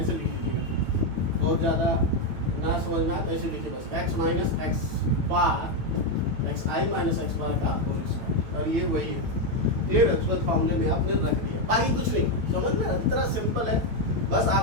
लिख लीजिएगा, बहुत ज़्यादा ना समझ में आए तो ऐसे लिखिए बस x minus x bar x i minus x bar का होल स्क्वायर और ये वही है क्लियर है। फॉर्मूले में आपने रख दिया, बाकी कुछ नहीं समझ में इतना सिंपल है, बस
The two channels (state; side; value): late; left; 9.0 ms